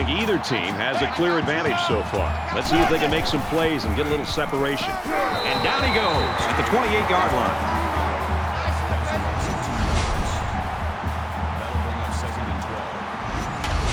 either team has a clear advantage so far. Let's see if they can make some plays and get a little separation. And down he goes at the 28-yard line.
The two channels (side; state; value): both; identical; correlation 1.00